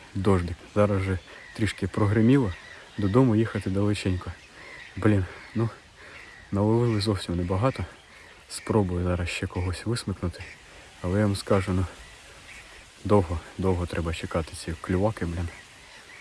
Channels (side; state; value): both; identical; correlation 1.00